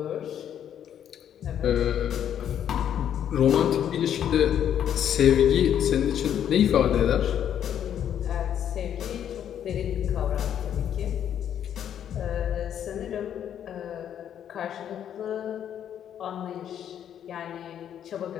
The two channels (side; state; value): right; quieter; 9.7 dB